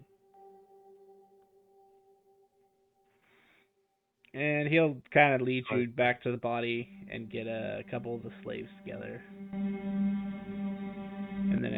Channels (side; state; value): both; identical; correlation 1.00